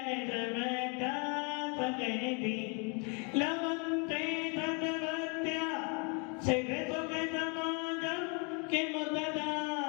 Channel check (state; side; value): quieter; right; 34.6 dB